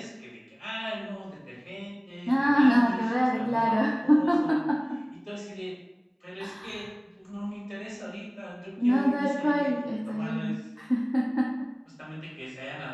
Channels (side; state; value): both; identical; correlation 1.00